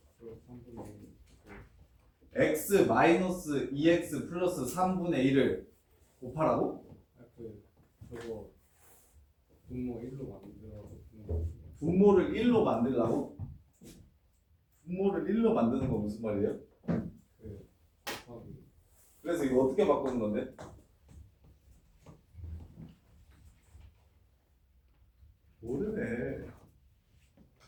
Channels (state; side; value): identical; both; correlation 1.00